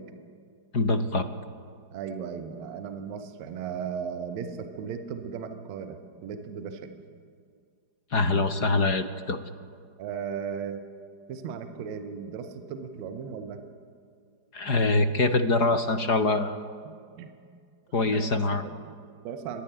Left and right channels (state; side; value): late; right; 4.9 ms